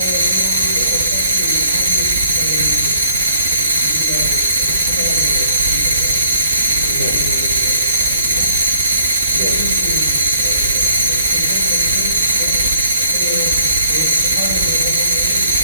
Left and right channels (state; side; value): inverted; both; correlation -0.62